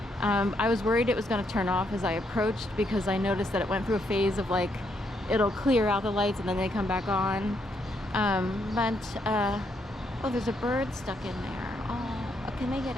I was worried it was going to turn off as I approached, because I noticed that it went through a phase of like, it'll clear out the lights and then they come back on. Oh, there's a bird stuck in there. Oh, can they get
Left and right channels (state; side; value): normal; both; correlation 0.75